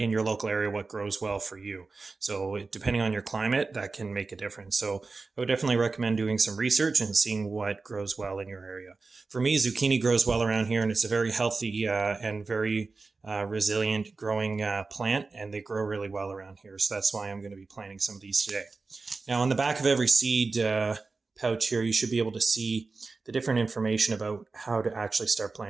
your local area, what grows well for you. So depending on your climate, that can make a difference. So I would definitely recommend doing some research and seeing what grows well in your area. For me, zucchini grows well around here, and it's a very healthy and very resilient growing plant, and they grow really well around here. So that's why I'm going to be planting some of these today. Now, on the back of every seed pouch here, you should be able to see the different information about how to actually start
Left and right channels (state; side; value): quieter; left; 4.0 dB